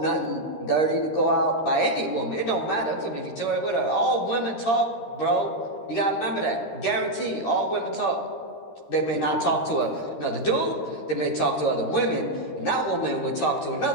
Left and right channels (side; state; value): right; late; 13 ms